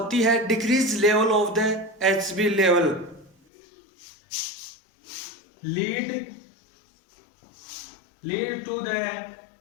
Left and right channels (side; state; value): right; drops out; at 3.3 s